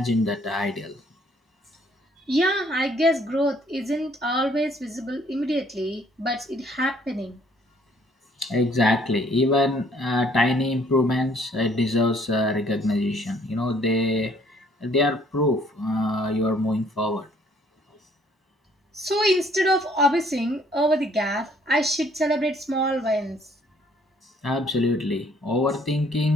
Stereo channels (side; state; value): both; normal; correlation 0.62